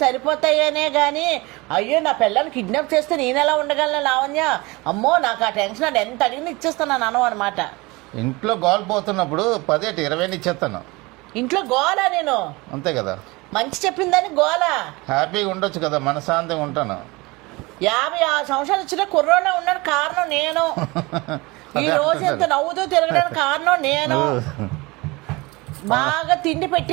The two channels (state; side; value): quieter; left; 23.7 dB